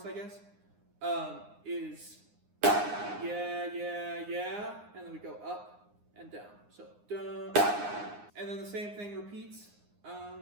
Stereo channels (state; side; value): late; left; 9.7 ms